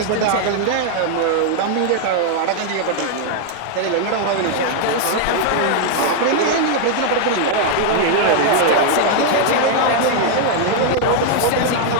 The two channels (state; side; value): different; both; correlation 0.00